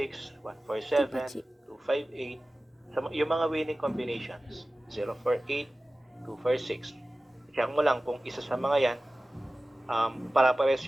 147, 258. So, yung mga winning combinations, 048, 246. Check mo lang kung isa sa mga yan, para-pares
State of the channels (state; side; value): normal; both; correlation 0.96